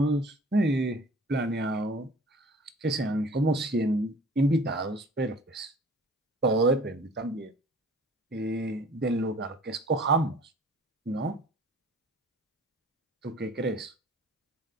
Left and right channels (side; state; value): both; normal; correlation 0.48